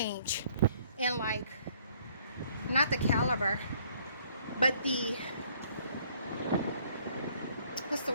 in, like, not the caliber, but the, what's the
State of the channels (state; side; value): inverted; both; correlation -0.62